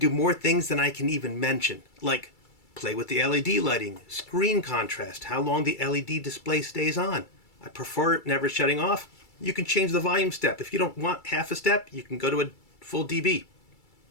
more things than I can even mention, like play with the LED lighting, screen contrast, how long the LED display stays on. I prefer it never shutting off. You can change the volume step. If you don't want half a step, you can go to a full dB.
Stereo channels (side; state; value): right; late; 2.3 ms